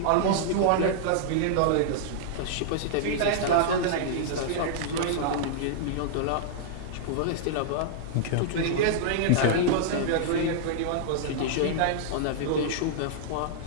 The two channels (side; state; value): both; different; correlation -0.02